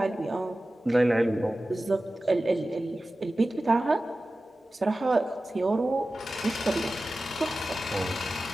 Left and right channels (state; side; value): normal; both; correlation 0.95